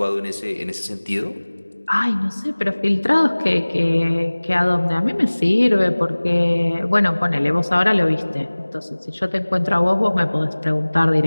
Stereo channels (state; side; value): inverted; both; correlation -1.00